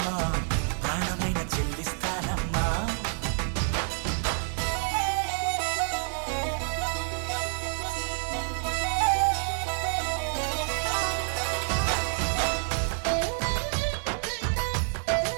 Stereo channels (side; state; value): left; silent; 59 dB below the other